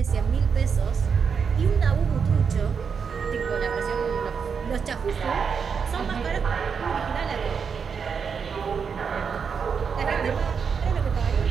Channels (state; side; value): quieter; left; 6.2 dB